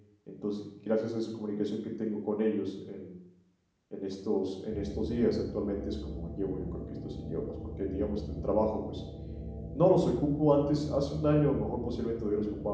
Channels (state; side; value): identical; both; correlation 1.00